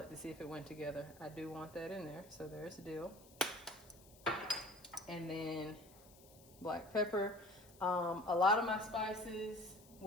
to see if it went together. I do want that in there. So there's dill. And then black pepper. A lot of my spices,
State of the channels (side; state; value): left; noise; hiss, 23 dB below the sound